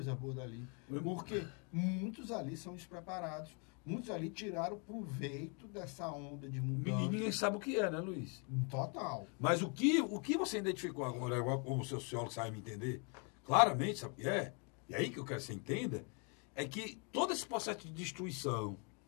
boa dali, porque muitos ali são despreparados, muitos ali tiraram proveito dessa onda de mudança. Ninguém sabe o que é, né, Luiz? Total. Mas o que você identificou agora, como o seu sociólogo sabe me entender, claramente, sabe o que é? E aí que eu quero que você entenda, é que todo esse processo de destruição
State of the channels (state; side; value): quieter; right; 36.4 dB